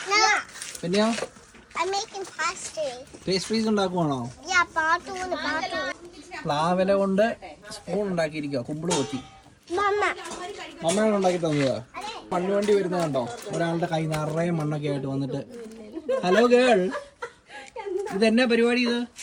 പിന്നെയോ പേസ്ട്രീസ് ഉണ്ടാക്കുവാണോ? പ്ലാവില കൊണ്ട് സ്പൂൺ ഉണ്ടാക്കിയിരിക്കുക. കുമ്പിള് കൊത്തി മമ്മയാണ് ഉണ്ടാക്കി തന്നതാ. മണ്ണുവണ്ടി വരുന്നത് കണ്ടോ? ഒരാളുടെ കൈ നിറയെ മണ്ണൊക്കെ ആയിട്ട് വന്നിട്ട്, ഹലോ ഗേൾ, ഇതെന്നാ പരിപാടി? ഇത്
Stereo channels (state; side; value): identical; both; correlation 1.00